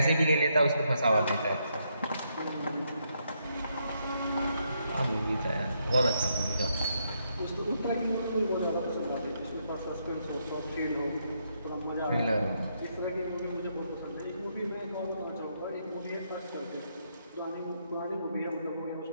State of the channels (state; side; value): inverted; both; correlation -0.77